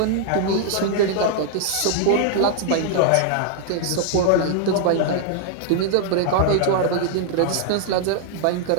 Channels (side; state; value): both; different; correlation -0.01